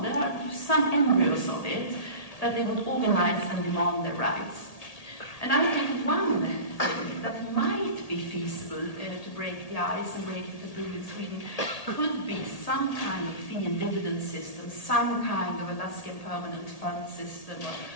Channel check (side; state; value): right; late; 1.8 ms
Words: are some embryos of it, that they would organize and demand their rights. And I think one thing that might be feasible to break the ice and break the through in Sweden could be some kind of fee and dividend system, some kind of Alaskan permanent fund system,